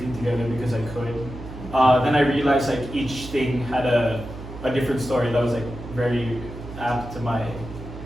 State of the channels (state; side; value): noise; right; hum, 12 dB below the sound